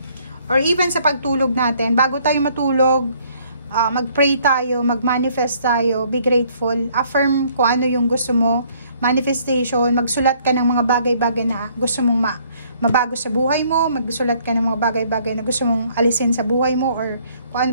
Or even sa pagtulog natin, bago tayo matulog, mag-pray tayo, mag-manifest tayo, be grateful, affirm kung ano yung gusto mo, manifestation, magsulat ka ng mga bagay-bagay na gusto mong mabago sa buhay mo, magsulat ka ng mga bagay-bagay na gusto mong alisin sa buhay mo, or kung ano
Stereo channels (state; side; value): inverted; both; correlation -0.63